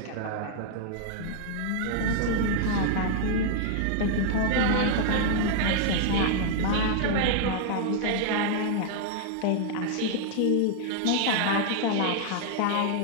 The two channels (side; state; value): both; different; correlation 0.00